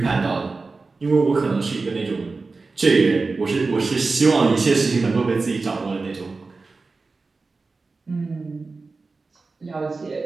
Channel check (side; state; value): left; quieter; 3.9 dB